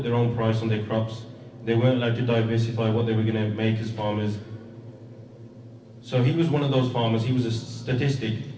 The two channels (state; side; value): identical; both; correlation 1.00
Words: their own price on their crops. They weren't allowed to diversify what they were going to make as farmers. So he was one of those farmers. He was a statistic,